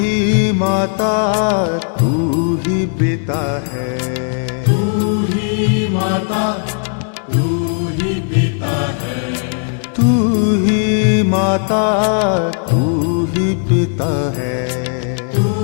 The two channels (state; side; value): silent; right; 57 dB below the other